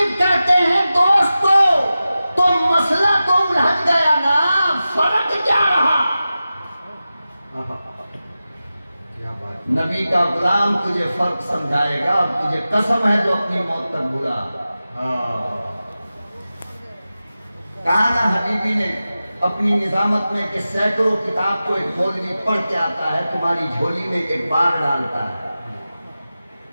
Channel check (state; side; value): inverted; both; correlation -0.94